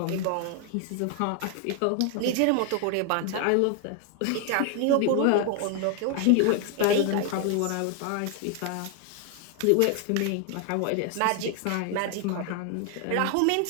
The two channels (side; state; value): both; different; correlation 0.01